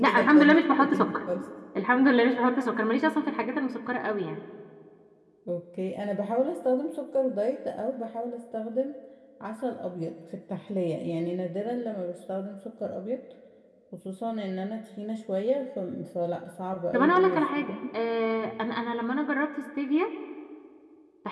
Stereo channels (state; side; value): identical; both; correlation 1.00